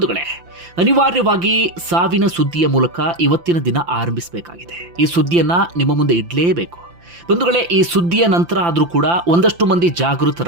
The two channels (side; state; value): left; late; 5.8 ms